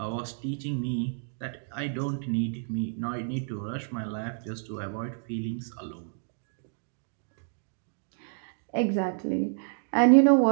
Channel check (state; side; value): silent; left; digital silence